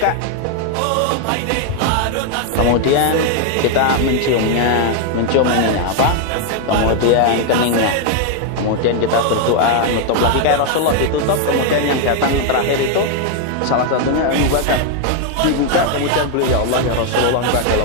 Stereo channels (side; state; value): both; different; correlation 0.00